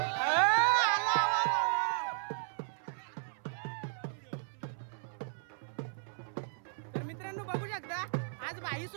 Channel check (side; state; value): left; silent; 54 dB below the other